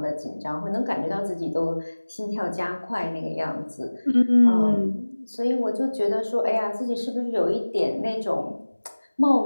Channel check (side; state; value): both; inverted; correlation -1.00